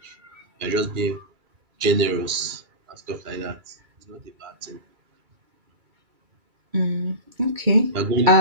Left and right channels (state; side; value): late; left; 2.3 ms